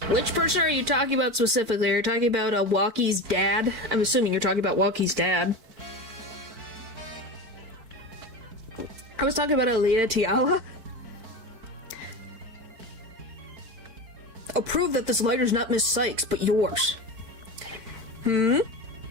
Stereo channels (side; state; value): left; late; 4.5 ms